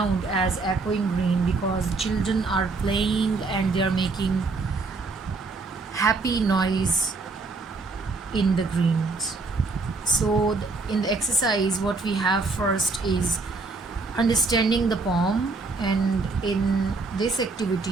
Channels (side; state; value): left; quieter; 3.8 dB